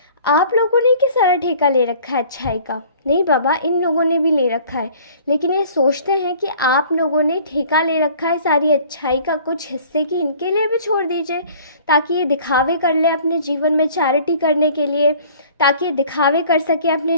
आप लोगों ने क्या सारा ठेका ले रखा है अच्छाई का। नहीं बाबा, इन लोगों ने भी ले रखा है, लेकिन ये सोचते हैं कि आप लोगों ने ठेका ले रखा है सारी अच्छाई का, कुछ हिस्से की इनके लिए भी छोड़ दीजिए, ताकि ये दिखावे कर ले अपने जीवन में, चैरिटी करने के लिए, ताकि ये दिखावे कर सके अपने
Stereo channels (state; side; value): inverted; both; correlation -0.50